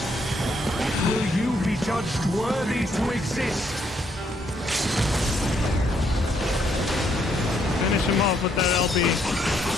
Will you be judged worthy to exist? Finish him off with that LB.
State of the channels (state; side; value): normal; both; correlation 0.72